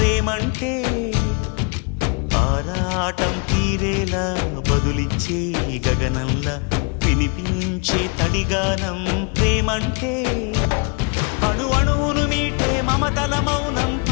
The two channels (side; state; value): right; quieter; 34.1 dB